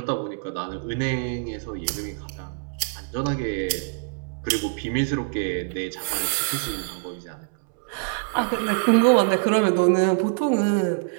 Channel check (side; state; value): left; silent; 62 dB below the other